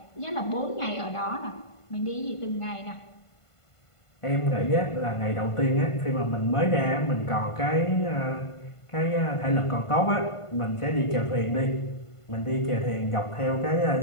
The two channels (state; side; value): late; right; 1.5 ms